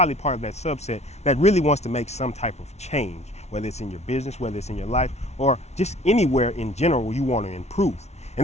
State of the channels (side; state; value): right; late; 0.32 ms